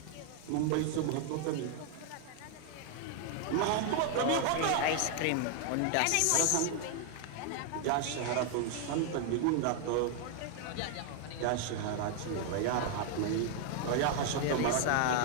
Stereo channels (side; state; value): both; different; correlation 0.00